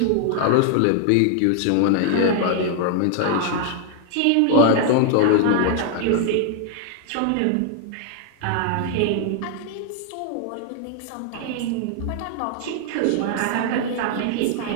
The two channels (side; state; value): both; different; correlation 0.00